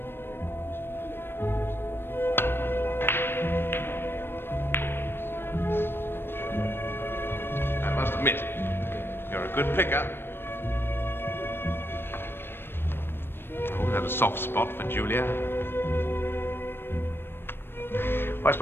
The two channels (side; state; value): right; late; 0.10 ms